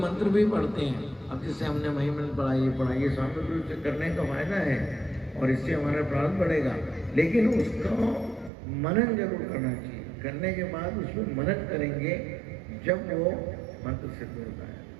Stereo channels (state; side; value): drops out; left; at 8.5 s